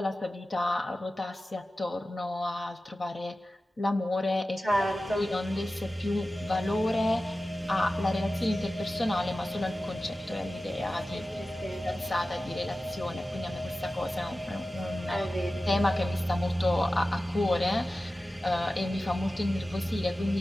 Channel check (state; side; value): normal; both; correlation 0.95